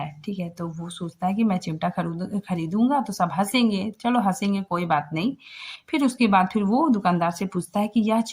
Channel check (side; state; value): both; identical; correlation 1.00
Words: ठीक है, तो वो सोचता है कि मैं चिमटा खरीदूंगा तो सब हंसेंगे, चलो हंसेंगे कोई बात नहीं। फिर उसके बाद फिर वो दुकानदार से पूछता है कि यह